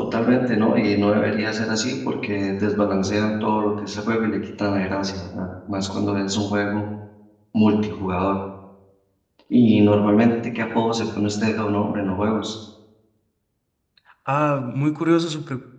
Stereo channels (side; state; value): both; identical; correlation 1.00